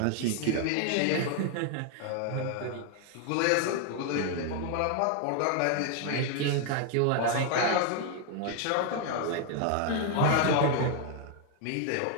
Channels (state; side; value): different; both; correlation 0.00